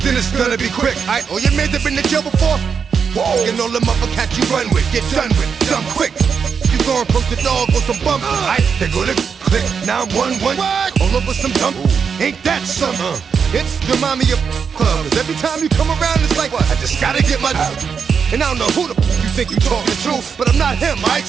then it's gonna be quick. All your men have been to jail before. Whoa. And all them other cats you run with, get done with, done quick. You going from the dog or some bump? They go to click 911 all over some dump. Ain't that something? It's remind me of clubs. Every time you come around, it's like I just gotta get my. And I don't know who the you think you talking to, but I'm not him. I ain't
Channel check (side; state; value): left; quieter; 6.4 dB